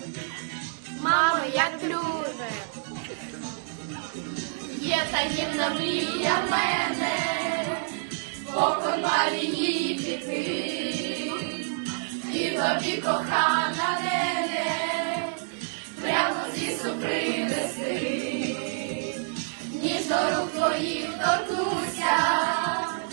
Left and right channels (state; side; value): silent; left; digital silence